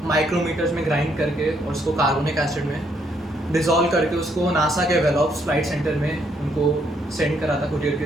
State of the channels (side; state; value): both; normal; correlation 0.72